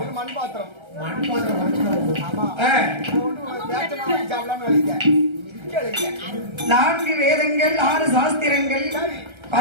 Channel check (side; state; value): left; late; 1.3 ms